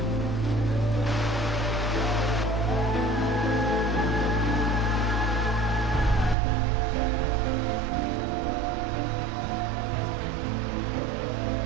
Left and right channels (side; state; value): left; drops out; at 6.4 s